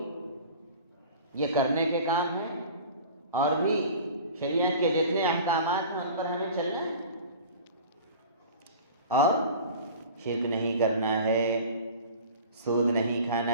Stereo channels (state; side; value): inverted; both; correlation -0.40